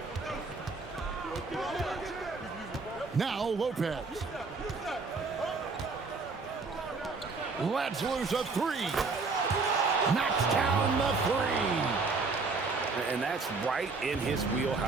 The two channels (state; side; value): quieter; left; 4.1 dB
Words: Now Lopez. Lets loose a 3. Knocks down the 3. And that's right in his